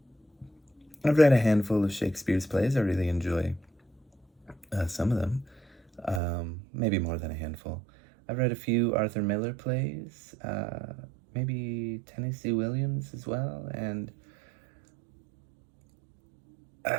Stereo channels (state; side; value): drops out; left; at 6.2 s